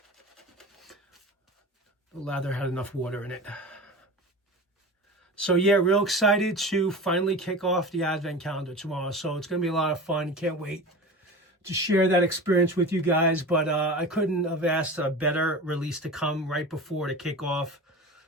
The lather had enough water in it. So yeah, real excited to finally kick off the Advent Calendar tomorrow. So it's going to be a lot of fun. Can't wait to share that experience with you guys. But I couldn't have asked a better release to come right before the kickoff.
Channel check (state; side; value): normal; both; correlation 0.32